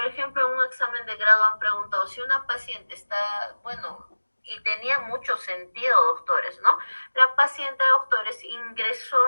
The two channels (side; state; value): both; inverted; correlation -1.00